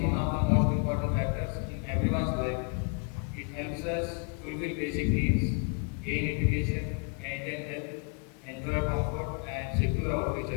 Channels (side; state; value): right; quieter; 35.2 dB